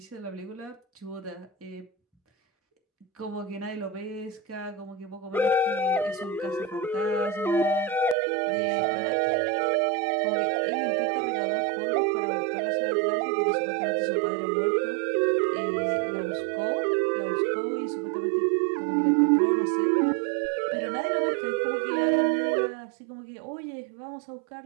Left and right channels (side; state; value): left; drops out; at 8.2 s